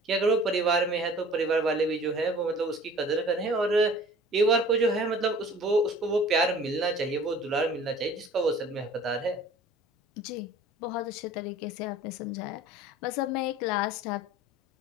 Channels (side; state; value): both; normal; correlation 0.47